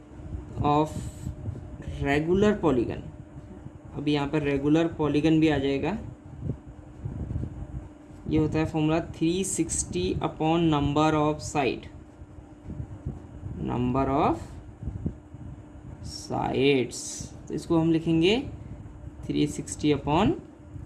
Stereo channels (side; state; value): both; identical; correlation 1.00